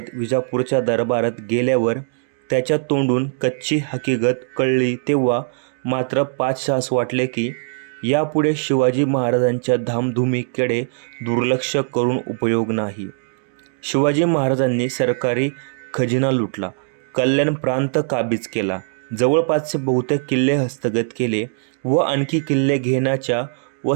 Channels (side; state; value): left; silent; digital silence